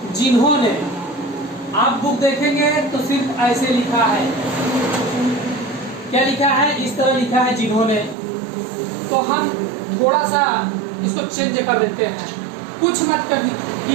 जिन्होंने। आप बुक देखेंगे तो सिर्फ ऐसे लिखा है, क्या लिखा है, इस तरह लिखा है जिन्होंने। तो हम थोड़ा सा इसको चेंज कर देते हैं, कुछ मत कर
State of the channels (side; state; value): left; drops out; at 8.2 s